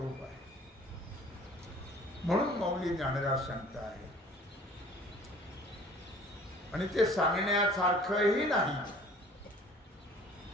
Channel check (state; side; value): normal; both; correlation 0.50